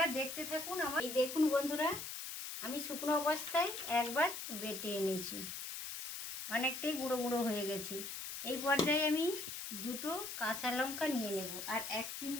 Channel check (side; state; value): left; noise; hiss, 6 dB below the sound